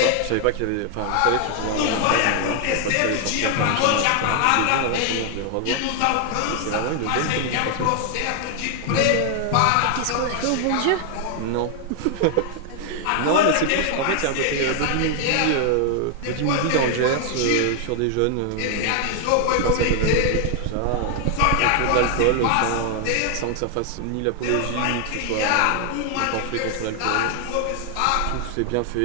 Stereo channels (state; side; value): different; both; correlation 0.00